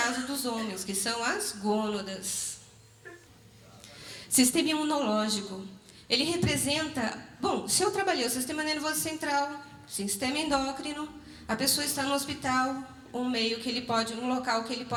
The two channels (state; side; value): identical; both; correlation 1.00